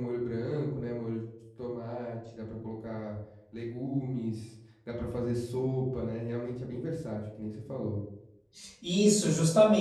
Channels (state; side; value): identical; both; correlation 1.00